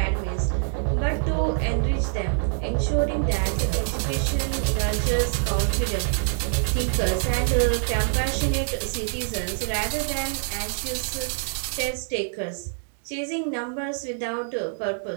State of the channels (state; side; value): silent; left; digital silence